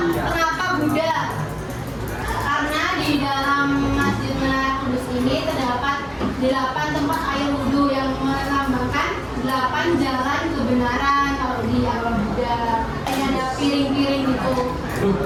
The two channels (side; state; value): both; identical; correlation 1.00